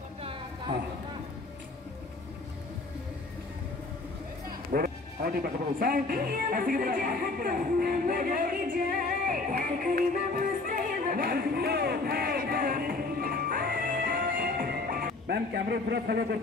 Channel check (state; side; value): quieter; right; 3.4 dB